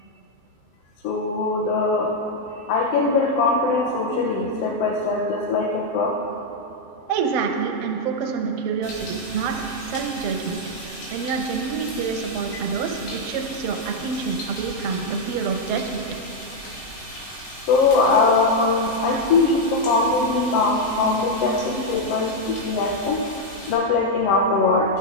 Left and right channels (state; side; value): late; right; 7.6 ms